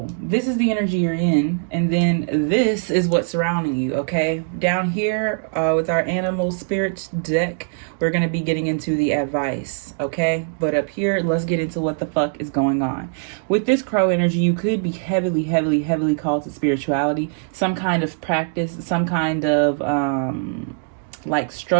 this is the energy you're in, and then this is what's surrounding you, okay? Down here, with our animal spirit deck, we're going to be getting into the advice, okay? But up here, let's get into what the fuck is going on. With this crow energy, you could be heavily called to spirituality, some kind of practice, some kind of, like,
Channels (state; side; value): silent; left; digital silence